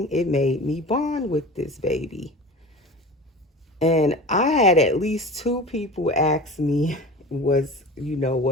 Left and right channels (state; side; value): normal; both; correlation 0.35